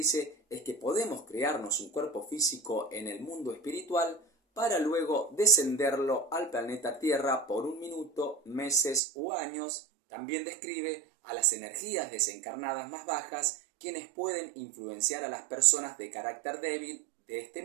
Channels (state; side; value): drops out; left; at 9.0 s